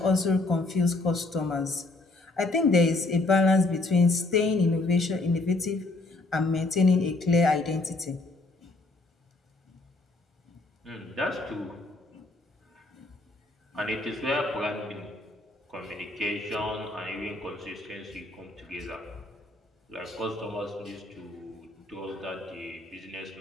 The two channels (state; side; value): quieter; right; 3.1 dB